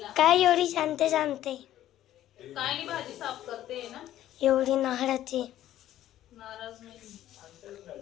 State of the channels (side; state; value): right; quieter; 12.9 dB